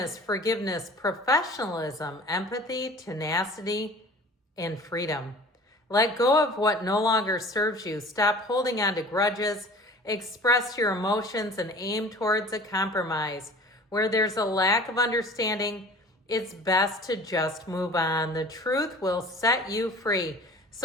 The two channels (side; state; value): both; normal; correlation 0.44